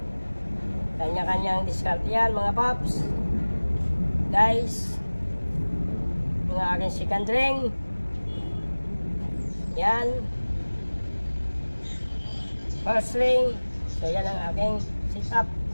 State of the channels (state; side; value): inverted; both; correlation -1.00